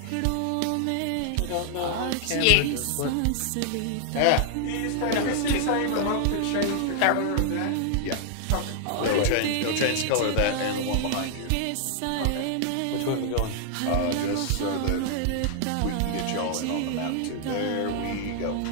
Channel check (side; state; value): both; different; correlation 0.00